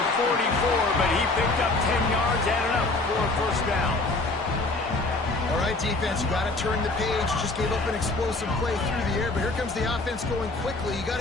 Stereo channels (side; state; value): right; quieter; 3.1 dB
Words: 44, but he picked up 10 yards, added up for a first down. All right, defense, you got to turn the page. You just gave up an explosive play through the air, but here comes the offense going quickly. You got